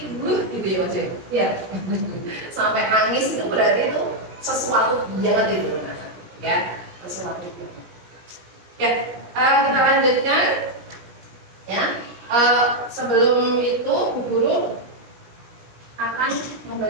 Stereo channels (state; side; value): late; left; 17 ms